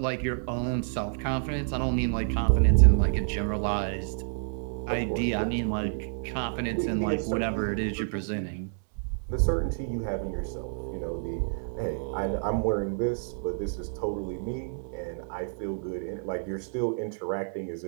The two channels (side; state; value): left; silent; digital silence